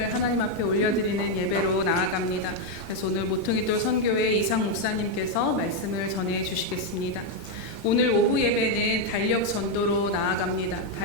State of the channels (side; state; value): both; normal; correlation 0.02